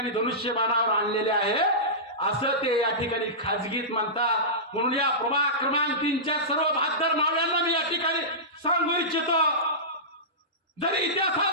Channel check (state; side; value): normal; both; correlation -0.18